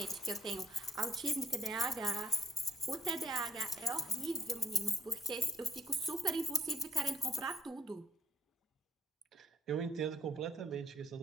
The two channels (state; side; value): normal; both; correlation 0.63